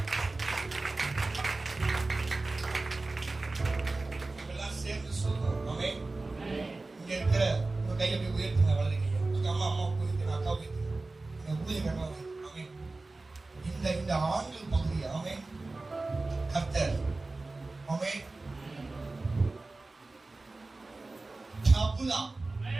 இதெல்லாம் சேர்ந்து சொல்றோம். ஆமென். இங்க இருக்கிற உங்க கையை போய் உயர்த்துங்க, வலது கையை. உங்க அம்மா உயர்த்துங்க, அக்கா உயர்த்துங்க. உங்க ஊழியக்காரங்க உயர்த்துங்க. ஆமென். இந்த ஆண்கள் பகுதி ஆமென். கர்த்தர் ஆமென்.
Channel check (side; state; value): left; quieter; 3.3 dB